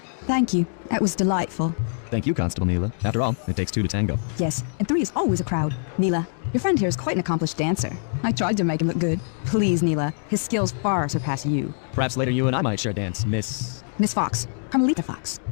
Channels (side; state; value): right; silent; 62 dB below the other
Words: Thank you. That was delightful. Thank you, Constable Neela. After all, it takes two to tango. Yes, and 3 is always a crowd. Neela, your friend here is quite an accomplished dancer. I tried to make him look good. Please, Neela, his skills far surpass you. Perhaps later you and I might share a dance, Miss... Miss Fox, Carmelita Fox.